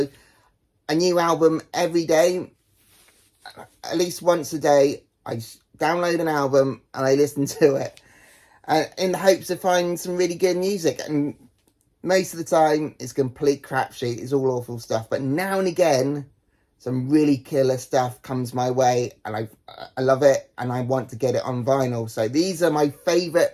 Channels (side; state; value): both; identical; correlation 1.00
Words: a new album every day. At least once a day, I download an album and I listen to it in the hopes to find some really good music. And most of the time, it's complete crapshoot. It's all awful stuff. But now and again, some really killer stuff comes my way and I love it and I want to get it on vinyl. So these are my favourite